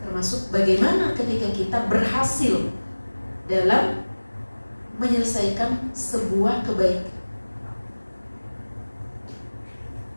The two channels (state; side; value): inverted; both; correlation -1.00